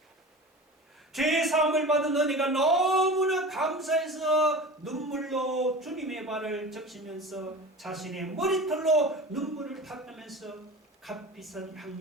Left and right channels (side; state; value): both; normal; correlation 0.34